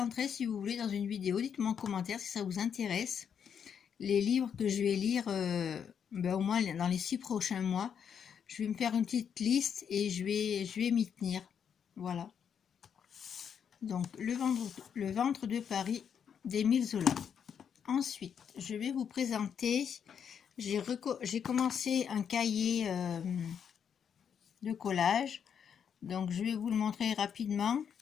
si vous voulez dans une vidéo. Dites-moi en commentaire si ça vous intéresse. Les livres que je vais lire au moins dans les 6 prochains mois. Je vais me faire une petite liste et je vais m'y tenir. Voilà. Donc le ventre de Paris d'Émile Zola. Ensuite, je vais vous présenter, j'ai commencé un cahier de collage. Donc je vais vous le montrer rapidement.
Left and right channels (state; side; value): quieter; right; 7.7 dB